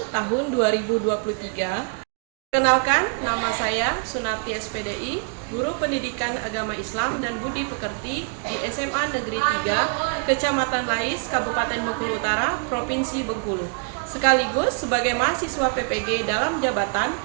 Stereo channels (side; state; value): left; quieter; 39.9 dB